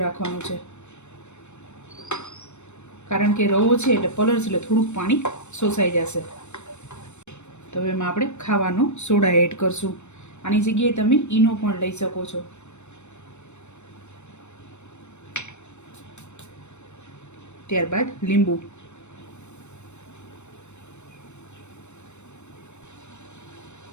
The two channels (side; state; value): right; late; 0.82 ms